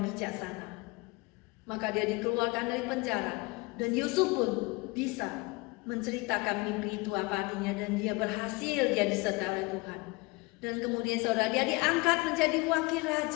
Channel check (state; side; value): quieter; right; 25.0 dB